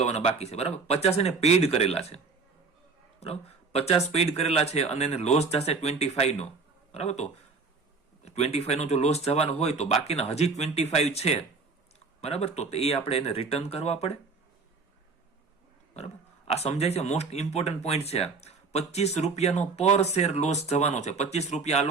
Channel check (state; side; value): quieter; left; 4.5 dB